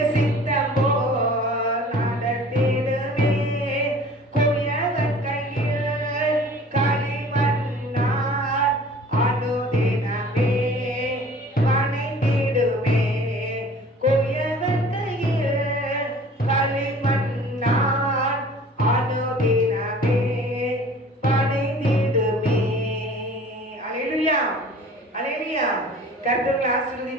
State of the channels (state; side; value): normal; both; correlation 0.47